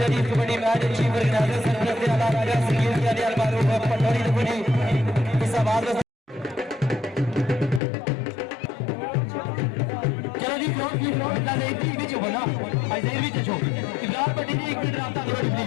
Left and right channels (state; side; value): drops out; right; at 7.8 s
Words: जी। कबड्डी मैच चीफ ऑर्गेनाइजर सरपरस्त आला राजा सिक्योरिटी के अलबारो पटोरी कबड्डी इस आवाज चलो जी ग्राउंड की ग्राउंड ला एक बीच हो ना आज एक बीच छो इब्राहिम पट्टी जी एक मिनट रास्ता दे